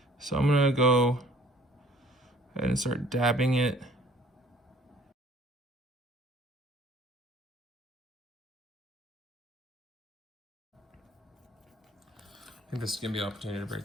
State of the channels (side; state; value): both; normal; correlation 0.55